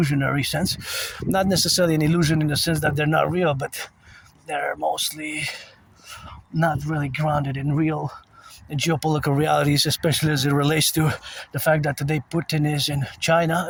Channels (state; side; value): identical; both; correlation 1.00